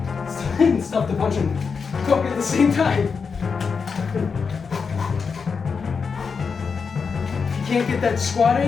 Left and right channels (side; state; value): right; quieter; 5.5 dB